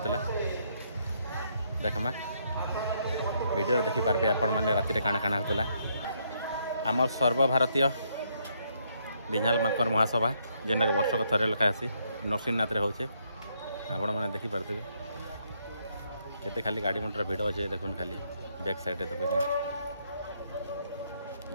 देखमा वीडियो देखी पार्बे आपण मैंने राति काना काना होता आम सर्वभारतीय बिंझाल माकर महासभा जेनटा वर्षक थरे लेखा आसी नरसिंहनाथ रे होचे आपण मैंने देखी पार्थे केते खाली गाड़ी मोटर भिड़ अच्छे देखुन खाली बैक साइड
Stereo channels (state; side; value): inverted; both; correlation -0.73